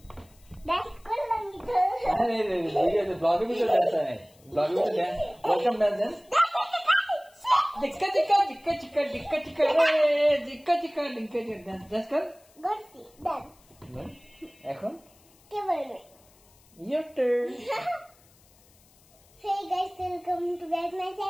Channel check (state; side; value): noise; left; hiss, 30 dB below the sound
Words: dance করলাম তো আরে রে ভিডিওতে ব্লগে ভিডিও ডান্স है ব্লগে ভিডিও ডান্স ওয়েলকাম ডান্স জিক্কা জিক্কা জিক্কা জিক্কা জিক্কা জিক্কা জিক্কা জিক্কা জিক্কা ডান্স ডান্স কর গর্সি ডান্স এখন কে বলবে your turn Hey guys, welcome to back my